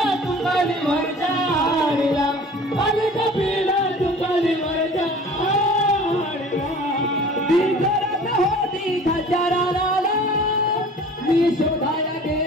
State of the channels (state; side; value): normal; both; correlation 0.45